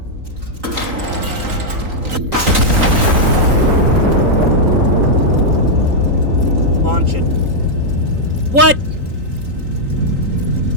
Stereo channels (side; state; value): left; late; 3.9 ms